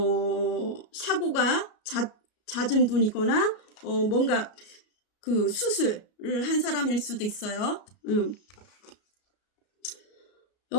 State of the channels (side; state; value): right; late; 33 ms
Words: 사고가 잦은 분이거나 뭔가 그 수술을 한 사람일 수도 있어요.